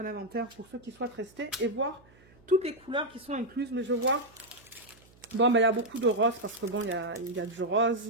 un inventaire pour ceux qui souhaitent rester et voir toutes les couleurs qui sont incluses. Mais je vois, bon, ben, il y a beaucoup de rose parce que bon, il y a du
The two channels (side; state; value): right; noise; hum, 27 dB below the sound